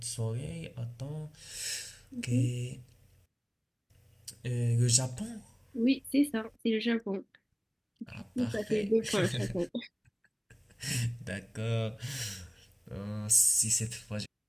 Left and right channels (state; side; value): identical; both; correlation 1.00